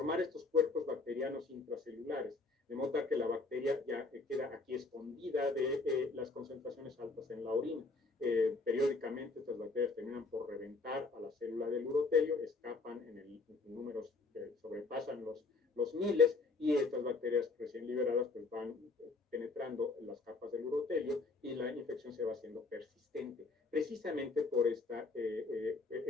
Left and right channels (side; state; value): right; quieter; 3.8 dB